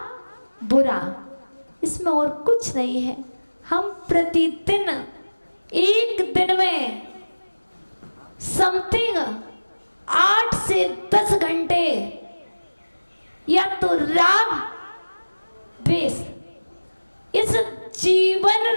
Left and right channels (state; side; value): inverted; both; correlation -1.00